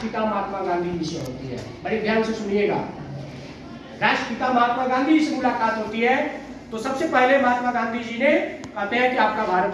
महात्मा गांधी जी से होती है। बड़े ध्यान से सुनिएगा, राष्ट्रपिता महात्मा गांधी जी से मुलाकात होती है। तो सबसे पहले महात्मा गांधी जी ने कहते हैं कि आपका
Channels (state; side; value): identical; both; correlation 1.00